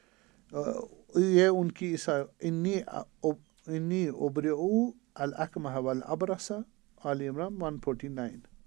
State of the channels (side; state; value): left; quieter; 23.2 dB